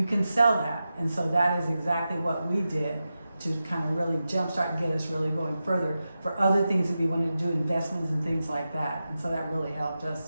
can sell that. And so that is exactly what we did to kind of really jumpstart and get us really going further for other things that we wanted to do, investments and things like that. And so that really helped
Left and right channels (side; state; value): both; inverted; correlation -0.92